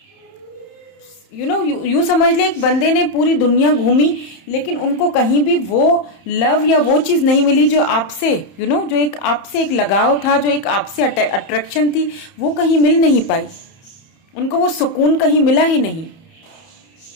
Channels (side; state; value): right; late; 31 ms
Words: यू समझ ले, एक बंदे ने पूरी दुनिया घूमी लेकिन उनको कहीं भी वो लव या वो चीज नहीं मिली जो आपसे जो एक आपसे एक लगाव था, जो एक आपसे अट्रैक्शन थी, वो कहीं मिल नहीं पाई। उनको वो सुकून कहीं मिला ही नहीं।